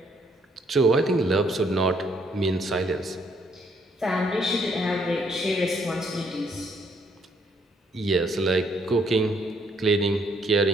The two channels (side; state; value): both; normal; correlation 0.69